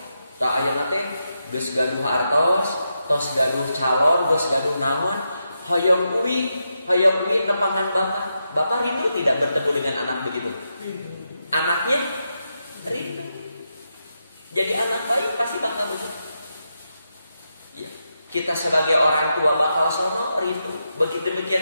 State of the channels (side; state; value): both; inverted; correlation -0.85